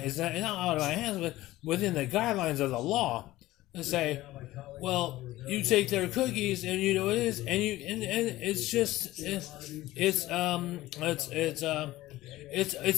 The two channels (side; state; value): right; quieter; 16.8 dB